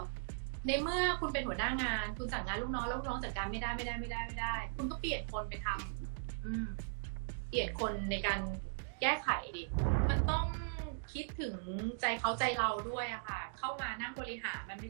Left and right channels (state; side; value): silent; left; digital silence